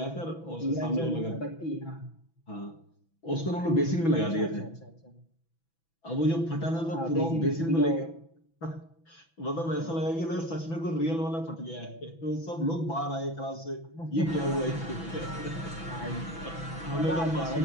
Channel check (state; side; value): late; right; 6.0 ms